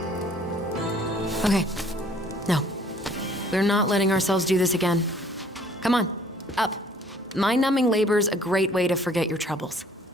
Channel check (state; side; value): normal; both; correlation 0.57